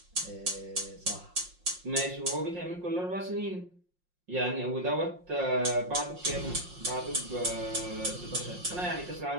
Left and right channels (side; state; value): left; late; 5.6 ms